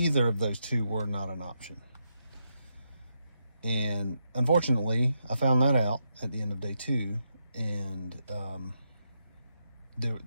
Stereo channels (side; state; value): both; inverted; correlation -0.83